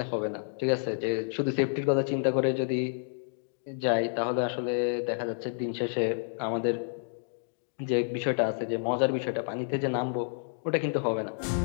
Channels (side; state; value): right; silent; digital silence